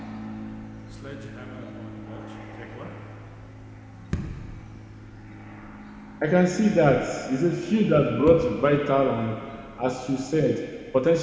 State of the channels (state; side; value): identical; both; correlation 1.00